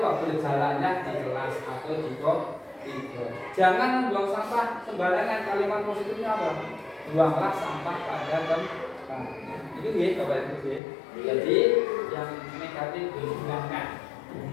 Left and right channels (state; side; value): drops out; right; at 10.8 s